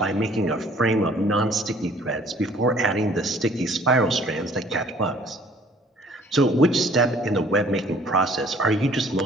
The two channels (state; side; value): normal; both; correlation 0.56